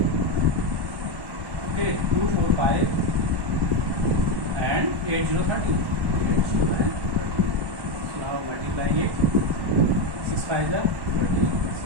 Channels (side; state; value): left; late; 1.1 ms